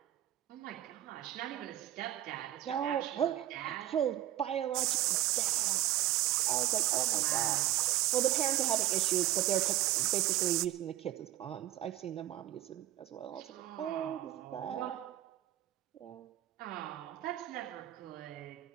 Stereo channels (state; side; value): quieter; left; 13.8 dB